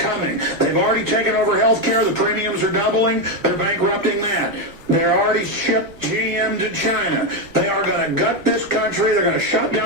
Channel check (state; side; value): normal; both; correlation 0.08